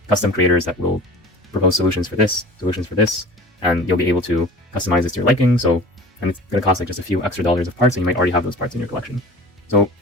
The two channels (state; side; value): normal; both; correlation 0.40